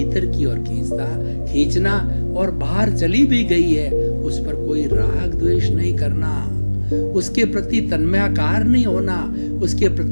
की ओर खींचना, और बाहर चली भी गई है उस पर कोई राग द्वेष नहीं करना, उसके प्रति तन्मयाकार नहीं होना, उसके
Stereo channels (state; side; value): inverted; both; correlation -1.00